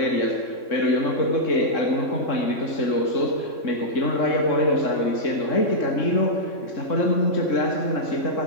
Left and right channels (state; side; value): late; right; 3.6 ms